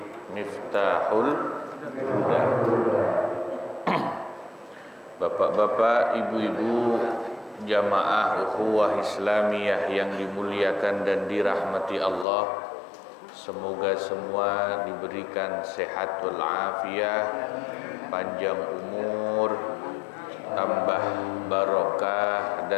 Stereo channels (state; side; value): drops out; right; at 12.2 s